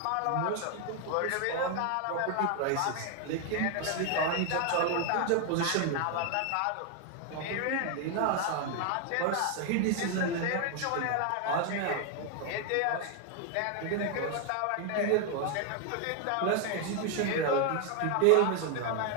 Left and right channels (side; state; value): both; different; correlation 0.01